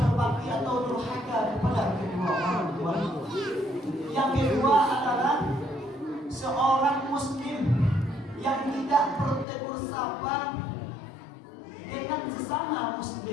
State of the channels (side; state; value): right; drops out; at 9.5 s